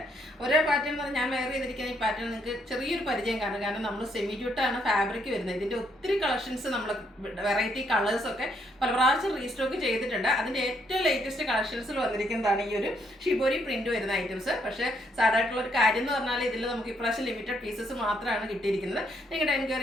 ഓരോ പാറ്റേൺ എന്ന് പറഞ്ഞാൽ ഞാൻ വെയർ ചെയ്തിരിക്കുന്ന ഈ പാറ്റേൺ നിങ്ങൾക്ക് ചെറിയൊരു പരിചയം കാണും. കാരണം നമ്മൾ സെമി ജൂട്ടാണ് ഫാബ്രിക് വരുന്നത്. ഇതിൻ്റെ ഒത്തിരി കളക്ഷൻസ് നമ്മൾ വെറൈറ്റി കളേഴ്സൊക്കെ പല പ്രാവശ്യം റീസ്റ്റോക്ക് ചെയ്തിട്ടുണ്ട്. അതിൻ്റെ ഏറ്റവും ലേറ്റസ്റ്റ് കളക്ഷൻസിൽ വന്നിരിക്കുന്നതാണ് ഈ ഒരു ഷിബോരി പ്രിന്റ് വരുന്ന ഐറ്റംസ്. പക്ഷേ സാധാരണ ഒരു കാര്യം എന്ന് പറഞ്ഞാൽ ഇതിൽ നമുക്ക് ഇപ്രാവശ്യം ലിമിറ്റഡ് പീസസ് മാത്രമാണ് കിട്ടിയിരിക്കുന്നത്. നിങ്ങളുടെ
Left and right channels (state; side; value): normal; both; correlation 0.73